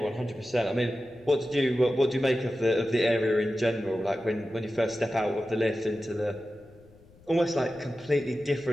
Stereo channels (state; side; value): noise; left; rumble, 27 dB below the sound